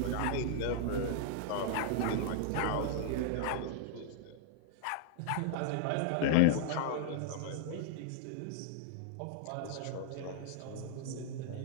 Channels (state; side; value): different; both; correlation 0.00